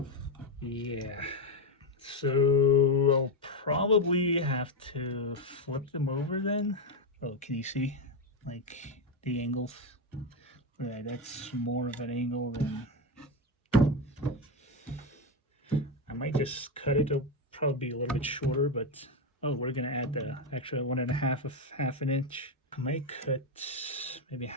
Yeah, so I'll probably have to flip them over then. Oh, can you see like the angles? Right, that's more of an angle than. I might just cut it. It'll probably be a little bit shorter, but we're gonna add the extra 1.5 of half an inch. I might cut maybe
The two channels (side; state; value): both; normal; correlation 0.09